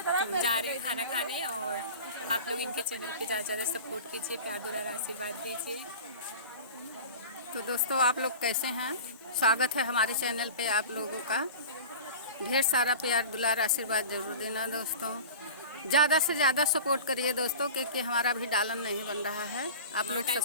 जा रहे हैं खाना खाने और आप लोग इनके चैनल पे ज़्यादा से ज़्यादा सपोर्ट कीजिए, प्यार दुलार आशीर्वाद दीजिए। तो दोस्तों, आप लोग कैसे हैं? स्वागत है हमारे चैनल पे आप लोगों का। ढेर सारा प्यार दुलार आशीर्वाद जरूर देना दोस्तों। ज़्यादा से ज़्यादा सपोर्ट करिए दोस्तों, क्योंकि हमारा भी डालन नहीं बन रहा है। आप लोग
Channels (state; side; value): inverted; both; correlation -0.35